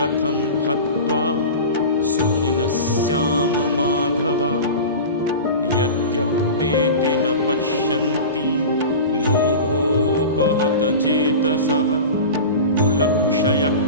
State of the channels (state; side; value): inverted; both; correlation -0.31